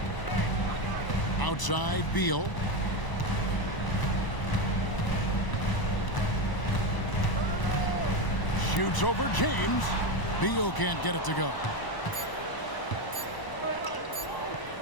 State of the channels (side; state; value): right; late; 1.0 ms